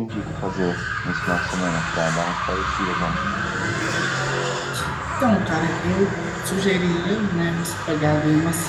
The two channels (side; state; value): both; identical; correlation 1.00